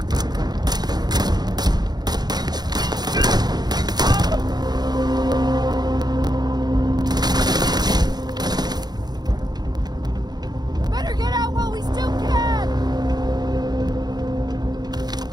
Better get out while we still can!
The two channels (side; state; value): left; late; 0.20 ms